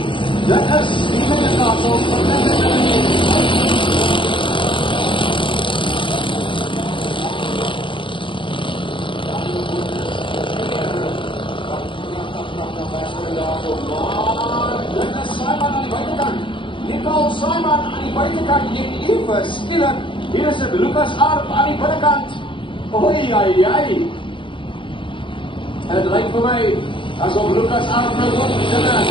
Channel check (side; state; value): right; late; 0.24 ms